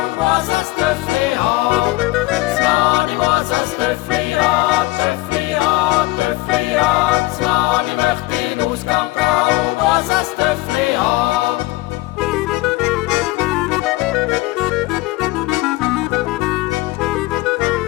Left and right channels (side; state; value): right; quieter; 20.1 dB